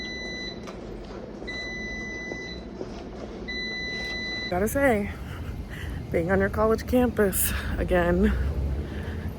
Gotta say, being on your college campus again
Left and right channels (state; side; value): identical; both; correlation 1.00